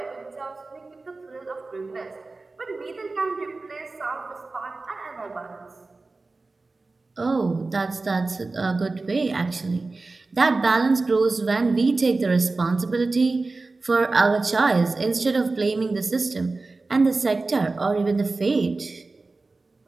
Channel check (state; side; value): quieter; left; 3.6 dB